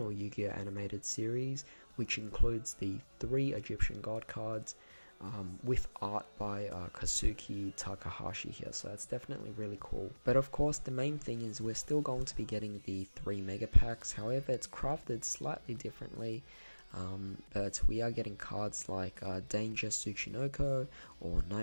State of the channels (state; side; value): inverted; both; correlation -1.00